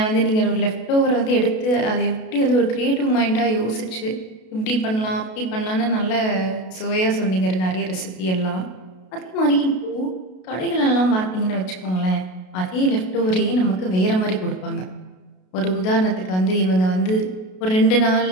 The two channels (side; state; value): right; late; 32 ms